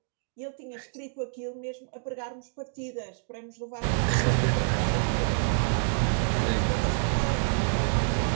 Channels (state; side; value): silent; left; digital silence